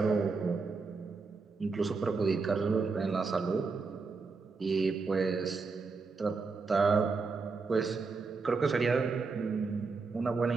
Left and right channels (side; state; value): left; quieter; 4.5 dB